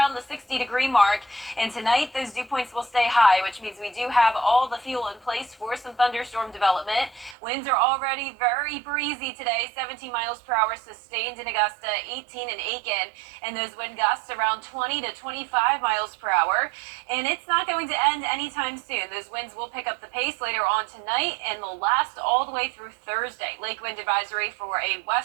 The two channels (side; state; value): left; drops out; at 7.4 s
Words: the 60-degree mark. And tonight, those dew points will stay high, which means we do have all the fuel in place for some thunderstorm development. Winds are already very breezy today, 17 miles per hour sustained in Augusta, 18 in Aiken, and those wind gusts around 20 to 25 miles per hour. And it's not going to end anytime soon. Those winds will pick up the pace later on tonight, and they'll last all the way through Thursday. Lake wind advisory for a